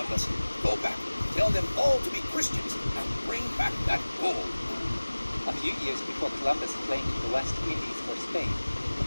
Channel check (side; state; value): both; inverted; correlation -1.00